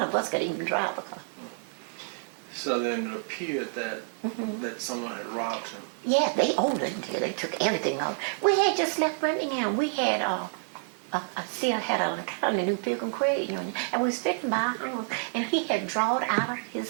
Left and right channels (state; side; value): silent; left; digital silence